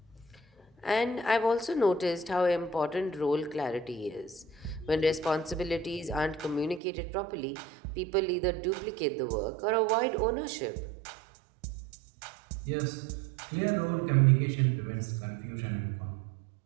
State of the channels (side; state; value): left; drops out; at 6.8 s